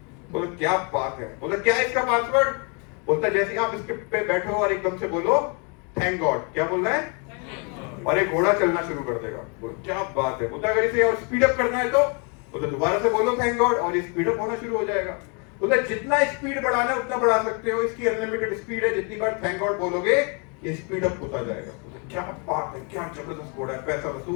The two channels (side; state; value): right; quieter; 35.5 dB